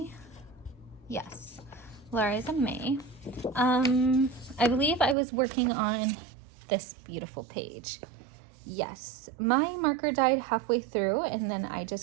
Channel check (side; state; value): left; drops out; at 5.2 s